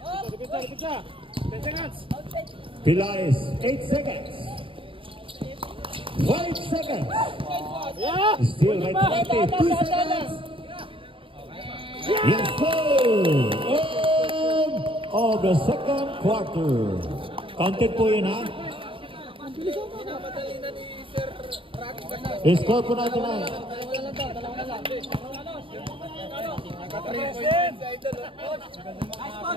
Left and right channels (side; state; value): left; late; 0.25 ms